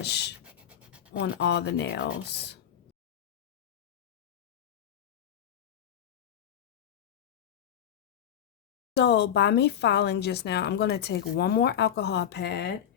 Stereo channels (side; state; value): right; quieter; 9.7 dB